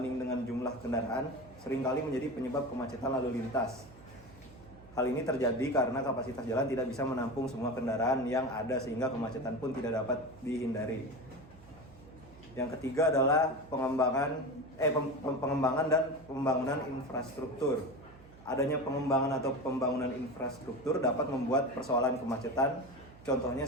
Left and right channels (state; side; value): noise; right; hum, 22 dB below the sound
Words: dengan jumlah kendaraan seringkali menjadi penyebab kemacetan lalu lintas. Hal ini terjadi karena kapasitas jalan tidak bisa menampung semua kendaraan yang ada sehingga kemacetan pun tidak dapat dihindari. Yang ketiga adalah pengembangan dan pembangunan infrastruktur. Adanya pengembangan atau pembangunan infrastruktur dapat membuat persoalan kemacetan.